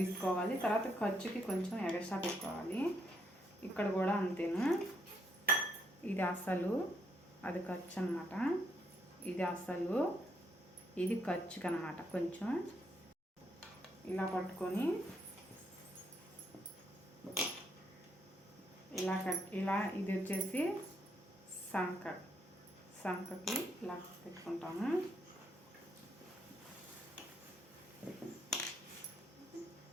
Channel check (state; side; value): normal; both; correlation 0.75